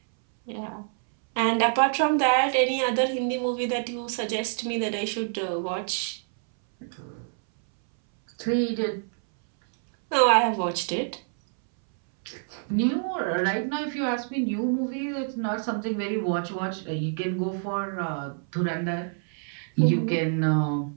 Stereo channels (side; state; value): left; silent; 60 dB below the other